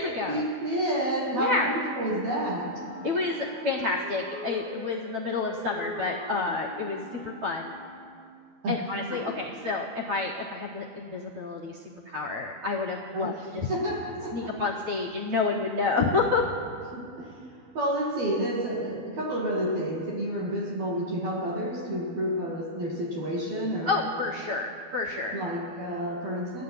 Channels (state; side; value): late; left; 12 ms